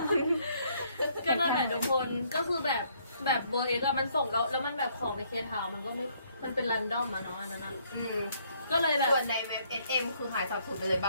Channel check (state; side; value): inverted; both; correlation -0.67